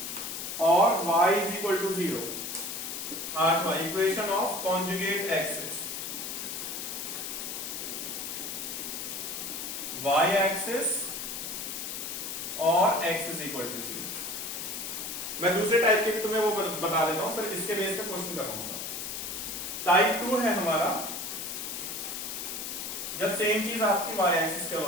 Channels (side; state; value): left; noise; hiss, 5 dB below the sound